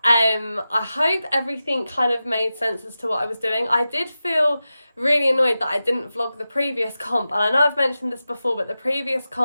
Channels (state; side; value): inverted; both; correlation -0.93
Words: I hope everything kind of made sense as to what I was doing. I did feel really annoyed that I didn't vlog the previous comp, and I know I've mentioned this before, but the previous